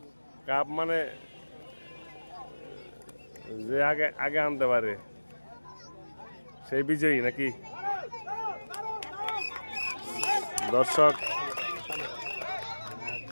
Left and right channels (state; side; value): inverted; both; correlation -1.00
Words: কাপ মানে যে আগে আগে আনতে পারে সেই বিজয়ী নাকি দর্শক